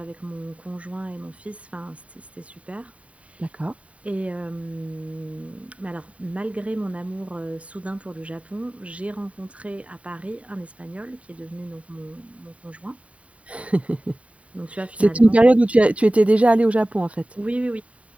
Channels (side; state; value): left; late; 0.066 ms